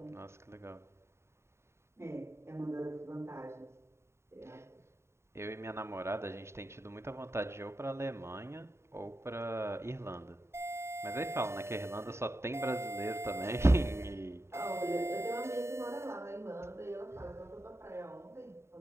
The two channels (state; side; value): late; left; 0.13 ms